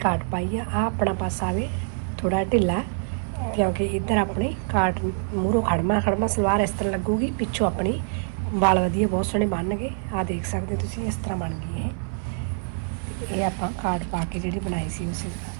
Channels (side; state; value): left; silent; 56 dB below the other